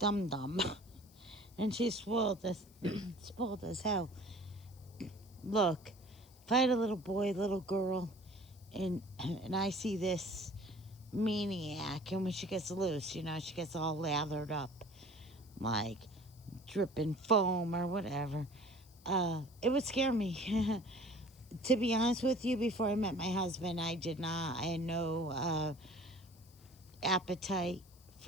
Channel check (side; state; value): left; noise; hiss, 27 dB below the sound